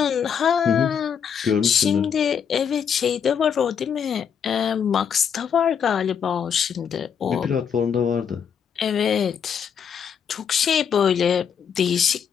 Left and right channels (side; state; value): right; quieter; 7.5 dB